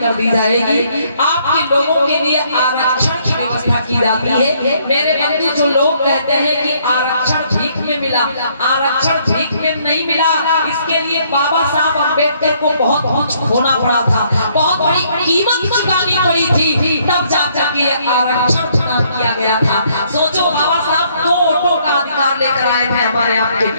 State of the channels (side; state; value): both; inverted; correlation -0.67